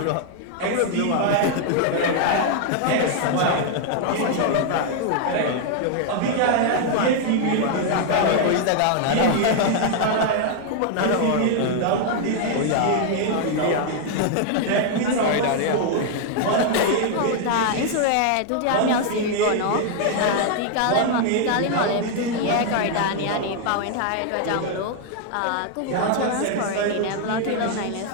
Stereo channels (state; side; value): different; both; correlation 0.00